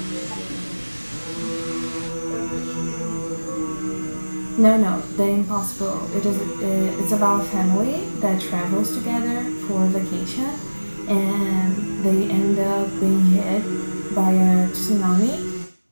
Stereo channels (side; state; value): both; inverted; correlation -1.00